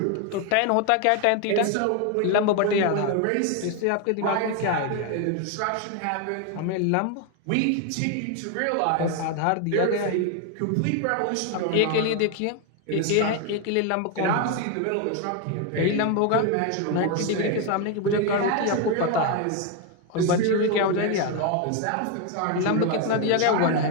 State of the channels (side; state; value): both; different; correlation 0.01